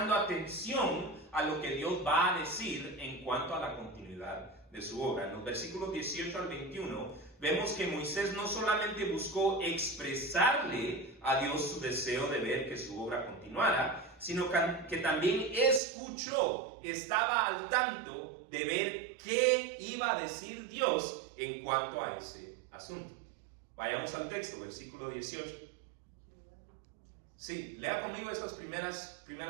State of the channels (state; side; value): drops out; left; at 15.8 s